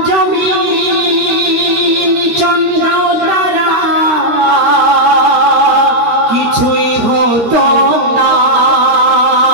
জমিন চন্দ্র তারা কিছুই হতো না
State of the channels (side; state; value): left; late; 13 ms